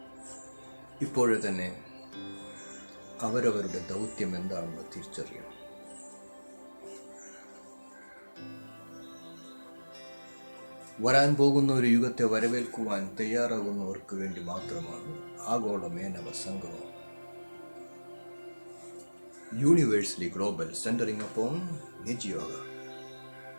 ഇപ്പോഴേ തന്നെ അവരവരുടെ ദൗത്യം എന്താണെന്ന് തിരിച്ചറിയണം. വരാൻ പോകുന്ന ഒരു യുഗത്തെ വരവേൽക്കുവാൻ തയ്യാറാകുന്നവർക്ക് വേണ്ടി മാത്രമാണ് ആഗോള മേനവ സംഗമം. Universally global, centering upon Nij Yoga,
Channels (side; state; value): both; inverted; correlation -1.00